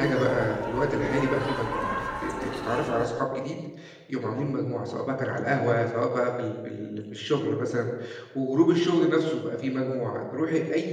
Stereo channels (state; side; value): identical; both; correlation 1.00